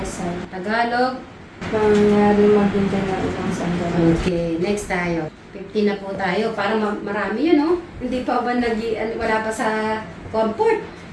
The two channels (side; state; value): both; identical; correlation 1.00